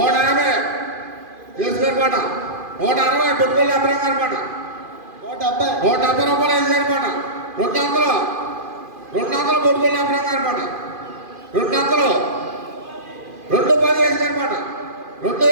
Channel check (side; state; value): left; late; 2.5 ms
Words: యేసు గారి పాట 160 బొట్టుపల్లి అబ్రహం గారి పాట 170 రూపాయలు యేసు గారి పాట 200 బొట్టుపల్లి అబ్రహం గారి పాట 210 యేసు గారి పాట